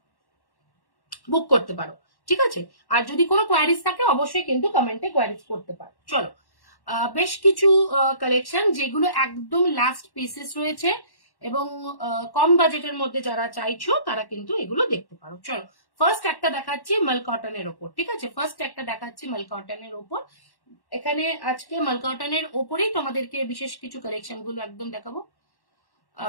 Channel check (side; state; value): right; late; 1.1 ms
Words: বুক করতে পারো, ঠিক আছে। আর যদি কোনো কোয়ারিজ থাকে অবশ্যই কিন্তু কমেন্টে কোয়ারিজ করতে পারো। চলো, বেশ কিছু কালেকশন যেগুলো একদম লাস্ট পিসেস রয়েছে এবং কম বাজেটের মধ্যে যারা চাইছো তারা কিন্তু এগুলো দেখতে পারো। চলো, ফার্স্ট একটা দেখাচ্ছি মাল কটনের ওপর, ঠিক আছে। ফার্স্ট একটা দেখাচ্ছি মাল কটনের ওপর। এখানে আজকে মাল কটনের ওপরেই তোমাদেরকে বিশেষ কিছু কালেকশন গুলো একদম দেখাবো।